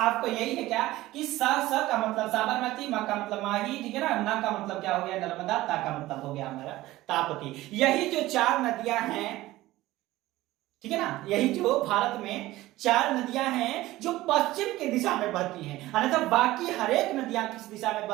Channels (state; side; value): quieter; left; 17.1 dB